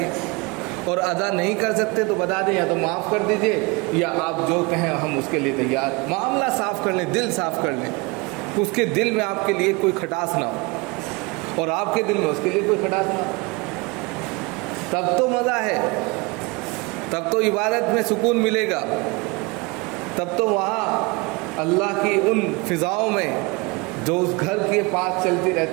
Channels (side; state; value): left; quieter; 26.6 dB